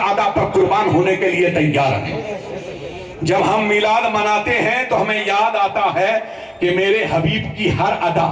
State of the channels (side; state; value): both; identical; correlation 1.00